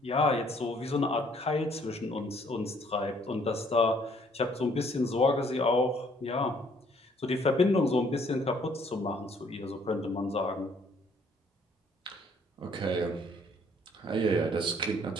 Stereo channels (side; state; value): both; normal; correlation 0.63